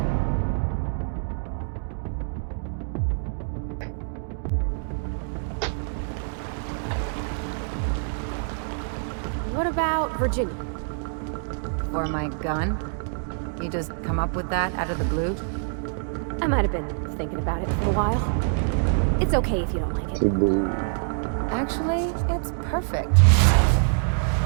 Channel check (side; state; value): left; silent; digital silence